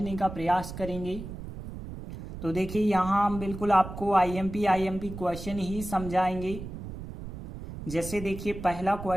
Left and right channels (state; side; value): noise; right; rumble, 10 dB below the sound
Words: का प्रयास करेंगे। तो देखिए, यहाँ हम बिल्कुल आपको आईएमपी क्वेश्चन ही समझाएंगे। जैसे देखिए, पहला